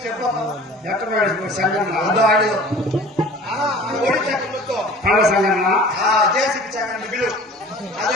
చెప్పమ్మా ఎక్కడ సంఘం ఆడు ఒడి చక్రంతో సంఘం జేసీకి చక్రం బిలు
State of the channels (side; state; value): both; normal; correlation 0.44